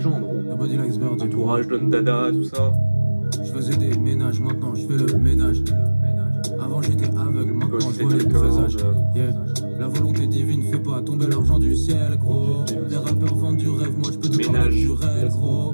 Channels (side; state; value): both; inverted; correlation -1.00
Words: gros. Entourage, Don Dada, tout ça. Je faisais des ménages, maintenant je fais le ménage. Avant j'étais aveugle, maintenant je vois les présages. La volonté divine fait pas tomber l'argent du ciel, gros. Les rappeurs vendent du rêve, moi je peux te parler du réel, gros.